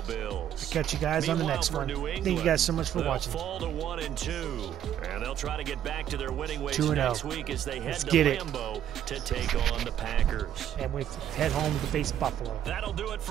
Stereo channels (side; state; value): left; quieter; 10.6 dB